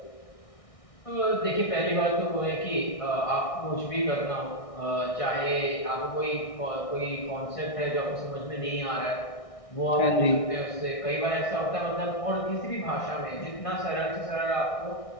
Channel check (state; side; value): late; right; 1.6 ms